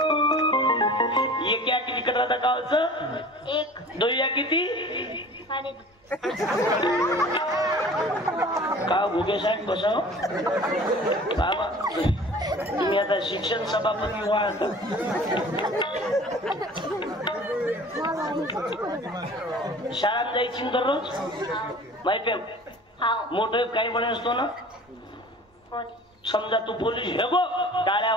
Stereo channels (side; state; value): both; normal; correlation 0.44